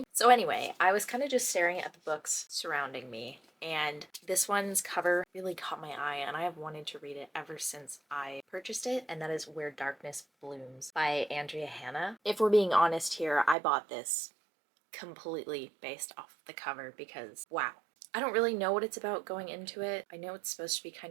So anyway, I was kind of just staring at the books surrounding me, and this one's cover really caught my eye, and I have wanted to read it ever since I purchased it, and that is Where Darkness Blooms by Andrea Hanna. If we're being honest here, I bought this completely based off the cover because, wow. I don't really know what it's about going into it. I know it's supposed to be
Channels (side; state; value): left; drops out; at 13.6 s